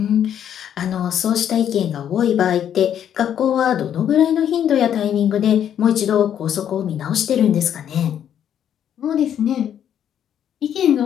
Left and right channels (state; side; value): quieter; right; 9.6 dB